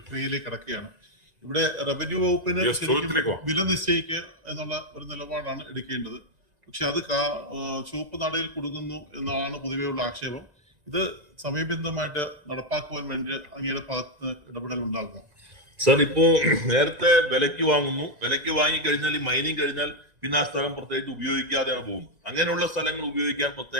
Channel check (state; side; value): late; left; 1.9 ms